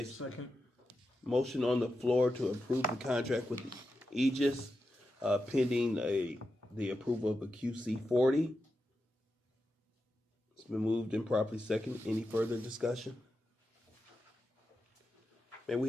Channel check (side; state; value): both; normal; correlation 0.89